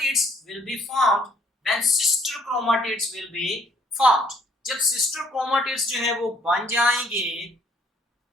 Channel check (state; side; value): normal; both; correlation 0.63